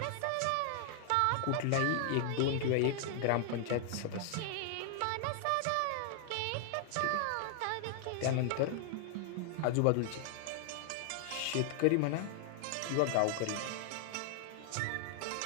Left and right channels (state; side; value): different; both; correlation -0.01